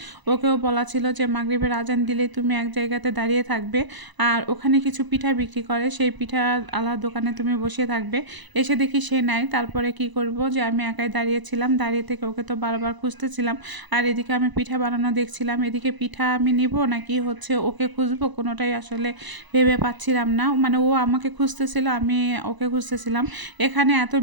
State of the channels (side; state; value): left; late; 1.0 ms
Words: ওকেও বলা ছিল যে মাগরিবের আজান দিলে তুমি এক জায়গাতে দাঁড়িয়ে থাকবে, আর ওখানে কিছু পিঠা বিক্রি করে, সেই পিঠা আলার দোকানে তুমি বসে থাকবে। এসে দেখি সে নাই, তারপরে কি করব যে আমি একাই দাঁড়িয়েছিলাম। দাঁড়িয়ে থেকে ওকে তো বারবার খুঁজতেছিলাম, আর এদিকে আমি পিঠা বানানো দেখছিলাম। এদিকে পিঠা আমি নিব নাকি হচ্ছে ওকে খুঁজবো, কোনোটাই আসলে ভেবে পাচ্ছিলাম না। মানে ও আমাকে খুঁজতেছিল, আমি ওকে খুঁজতেছিলাম। এখানে এত